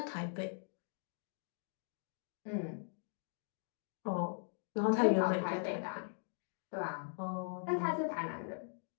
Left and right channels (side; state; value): right; silent; digital silence